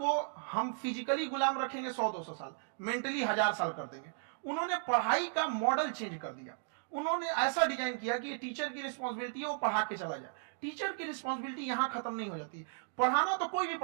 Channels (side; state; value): left; silent; digital silence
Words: हम फिजिकली गुलाम रखेंगे 100-200 साल, मेंटली 1000 साल कर देंगे। उन्होंने पढ़ाई का मॉडल चेंज कर दिया। उन्होंने ऐसा डिजाइन किया कि टीचर की रिस्पॉन्सिबिलिटी है वो पढ़ा के चला जाए। टीचर की रिस्पॉन्सिबिलिटी यहां खत्म नहीं हो जाती। पढ़ाना तो कोई भी